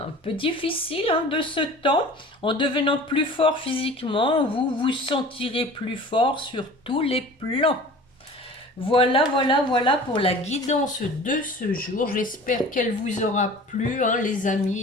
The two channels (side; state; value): both; normal; correlation 0.42